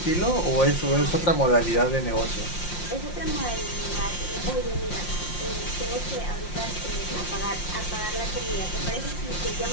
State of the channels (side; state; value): right; late; 5.7 ms